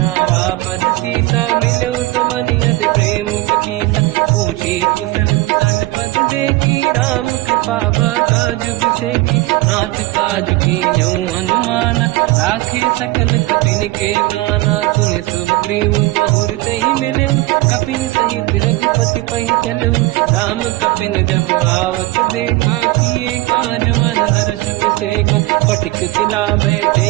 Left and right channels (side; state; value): left; quieter; 19.3 dB